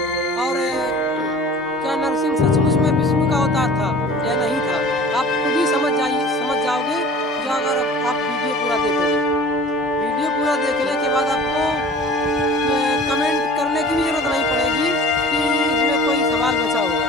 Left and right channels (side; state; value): both; normal; correlation 0.43